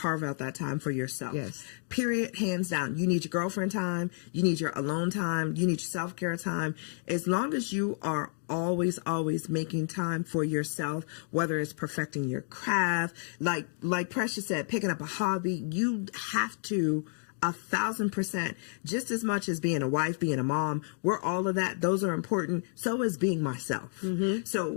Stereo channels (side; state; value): right; silent; 56 dB below the other